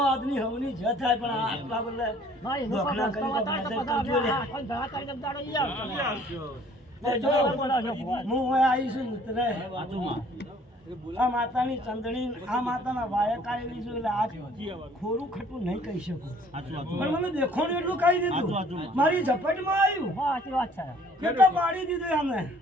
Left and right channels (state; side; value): normal; both; correlation 0.56